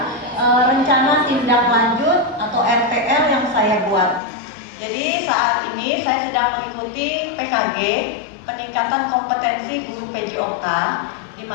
rencana tindak lanjut atau RTL yang saya buat. Jadi saat ini saya sedang mengikuti PKG, peningkatan kompetensi guru PJOK, di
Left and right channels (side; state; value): right; drops out; at 4.2 s